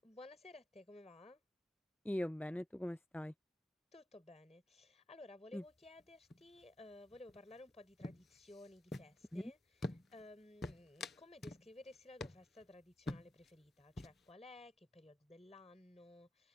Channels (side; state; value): both; normal; correlation 0.90